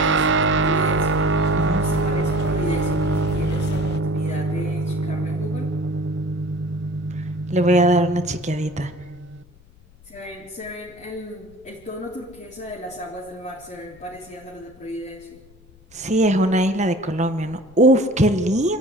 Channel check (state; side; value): noise; left; rumble, 26 dB below the sound